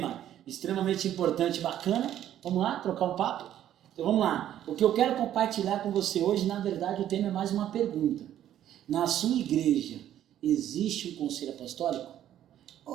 extremamente importante e bacana. Vamos lá trocar um papo? Então vamos lá. O que eu quero compartilhar com você hoje, na verdade, o tema é mais uma pergunta. Na sua igreja, existe um conselho apostólico?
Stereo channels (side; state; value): left; quieter; 11.4 dB